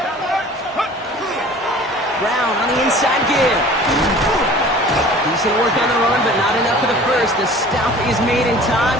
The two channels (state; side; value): normal; both; correlation 0.45